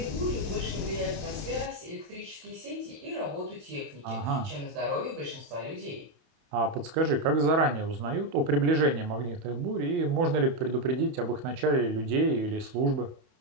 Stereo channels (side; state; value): left; late; 28 ms